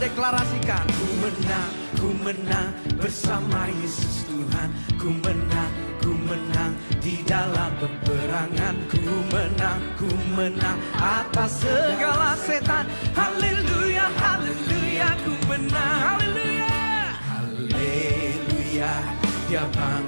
deklarasikan. Ku menang bersama Yesus Tuhan. Ku menang di dalam peperangan. Ku menang atas segala setan. Haleluya, haleluya, ku menang. Haleluya, haleluya, dia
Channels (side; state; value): both; inverted; correlation -1.00